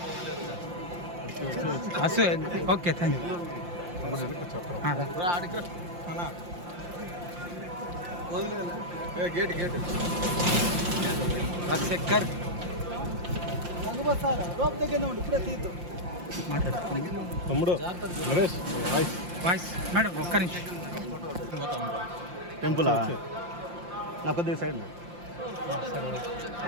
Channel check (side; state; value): left; late; 5.7 ms